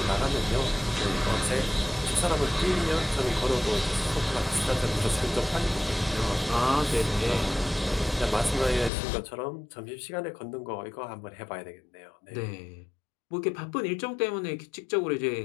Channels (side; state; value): right; drops out; at 8.9 s